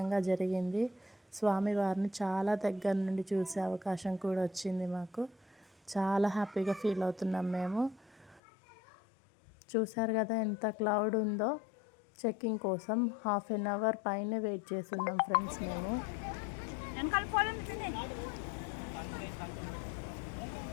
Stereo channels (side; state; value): right; drops out; at 8.4 s